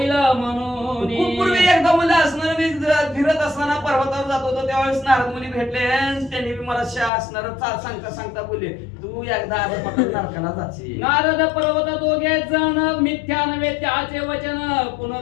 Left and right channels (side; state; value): right; drops out; at 7.1 s